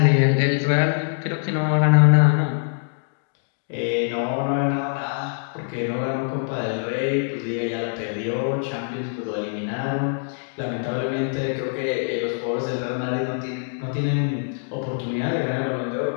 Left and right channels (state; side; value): silent; right; digital silence